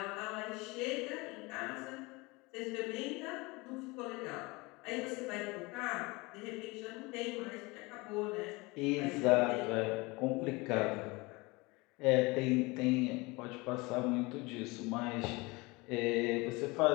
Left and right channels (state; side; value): quieter; right; 24.6 dB